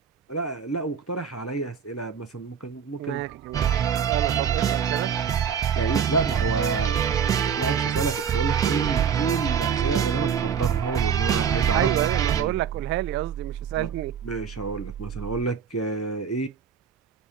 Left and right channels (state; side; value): quieter; left; 7.2 dB